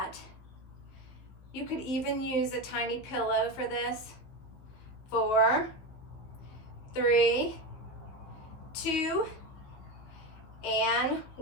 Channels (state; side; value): late; right; 16 ms